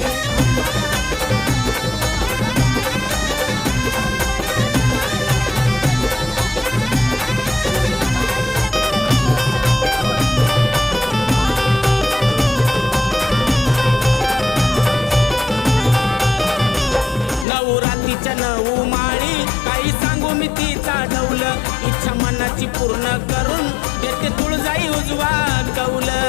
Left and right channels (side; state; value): right; drops out; at 17.4 s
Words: नवरात्रीच्या 9 माळी काही सांगू मी तिचा ढौल, इच्छा मनाची पूर्ण करून देते तुळजाई उजवा कौल.